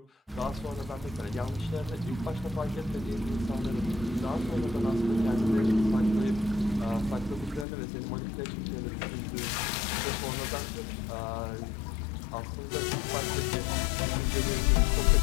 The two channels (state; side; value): drops out; right; at 7.7 s